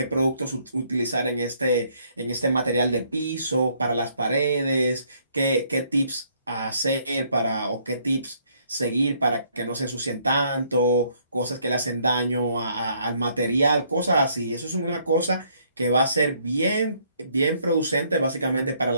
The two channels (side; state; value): both; inverted; correlation -0.67